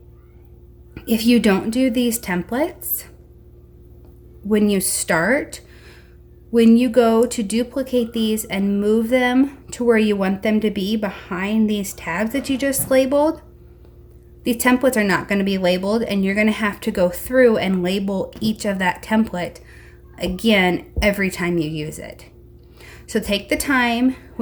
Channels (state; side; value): identical; both; correlation 1.00